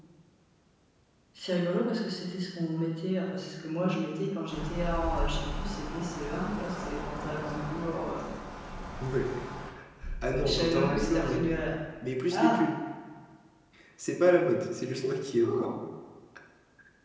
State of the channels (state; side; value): identical; both; correlation 1.00